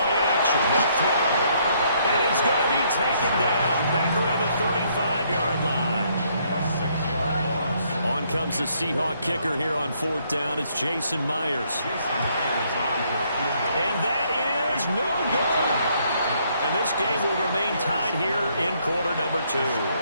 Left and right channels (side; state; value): both; inverted; correlation -0.69